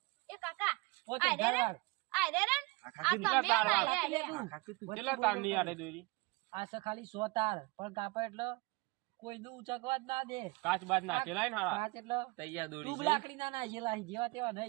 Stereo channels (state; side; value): quieter; left; 24.9 dB